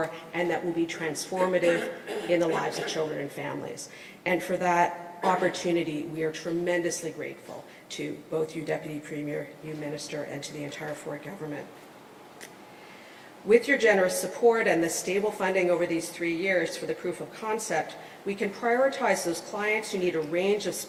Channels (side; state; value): both; identical; correlation 1.00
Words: and that will be transformative in the lives of children and families. And for that opportunity, we are tremendously grateful to both you, Deputy Premier, you, Minister, and to the entire Ford government. With your generous support and the stable funding over these 3 years for the proof of concept, we can prioritize those clients who need a range of